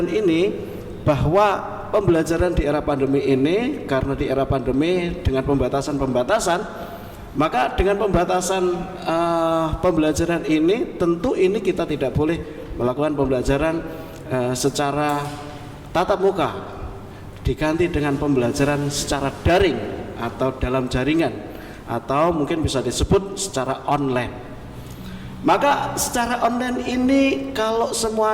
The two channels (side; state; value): both; identical; correlation 1.00